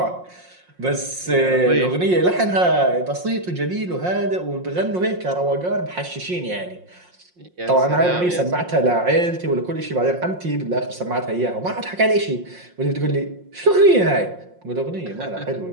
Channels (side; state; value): left; late; 5.6 ms